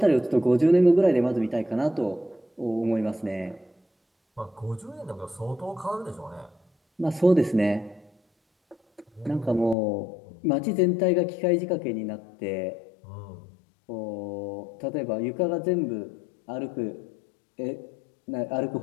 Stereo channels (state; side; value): drops out; right; at 9.8 s